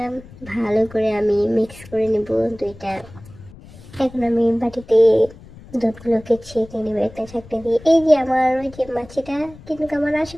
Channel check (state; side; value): noise; left; rumble, 20 dB below the sound